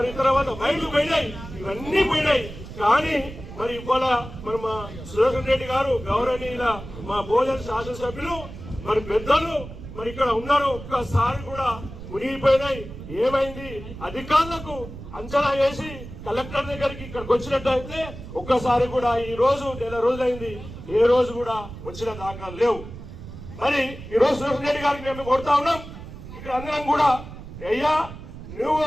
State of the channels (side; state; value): right; noise; rumble, 13 dB below the sound